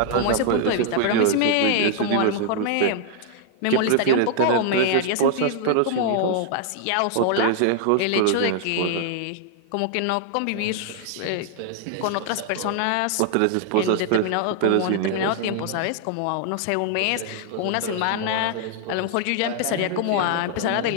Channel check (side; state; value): both; different; correlation -0.01